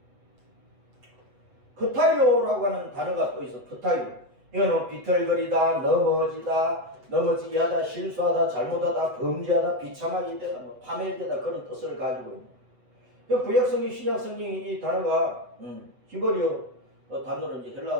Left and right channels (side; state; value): left; late; 8.0 ms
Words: 프타이오라고 하는 단어가 또 있어. 프타이오. 이거는 비틀거리다, 넘어지게 하다, 실수하다, 잘못하다, 범죄하다, 비참하게 되다, 파멸되다, 그런 뜻을 가지고 있는. 구약성경, 신약성경이 이 단어가 히브리어 단어로, 이제